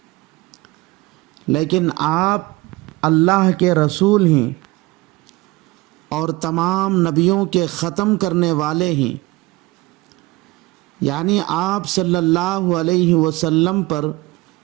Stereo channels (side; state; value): left; quieter; 21.1 dB